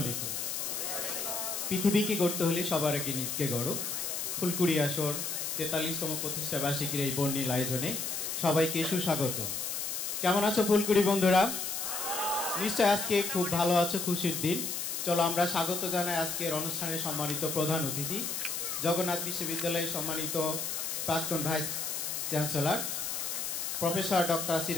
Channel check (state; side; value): noise; left; hiss, 3 dB below the sound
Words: আলাইকুম। পৃথিবীকে গড়তে হলে সবার আগে নিজকে গড়ো। ফুলকুড়ি আসর ৪৩তম প্রতিষ্ঠা বার্ষিকীর এই বর্ণিল আয়োজনে সবাইকে সুস্বাগত। কেমন আছো ফুলকুড়ি বন্ধুরা? নিশ্চয় আজকে খুব ভালো আছো, খুশির দিন। চলো আমরা স্বাগত জানাই আজকের অনুষ্ঠানের সম্মানিত প্রধান অতিথি, জগন্নাথ বিশ্ববিদ্যালয়ের সম্মানিত প্রাক্তন vice chancellor professor doctor